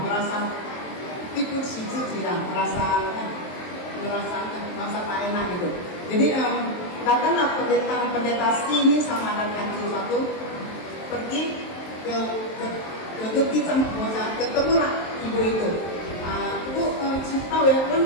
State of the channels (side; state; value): right; late; 23 ms